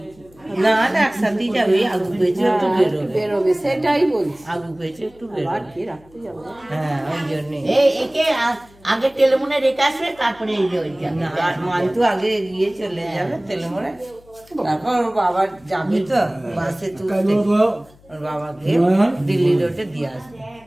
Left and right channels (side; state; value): left; noise; hum, 27 dB below the sound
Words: না না একসাথেই যাবে। আলু পেয়েছে একটু বেরোবে, সেটাই বলছি। আলু পেয়েছে একটু আর কি রাখতে যাবো? হ্যাঁ ওই জন্য একে আগে তেলেমুনে রেখে আসবে, তারপরে এই যে মান্তু আগে গিয়ে চলে যাবে তেলেমুনে, তারপর ওর বাবা যাবে তো বাসে তুলতে, ওর বাবাকে দিল্লি রোডে দিয়ে আসবে।